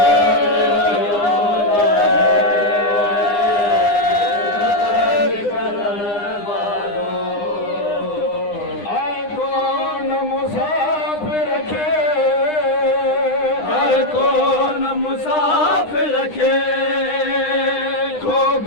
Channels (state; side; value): late; right; 9.8 ms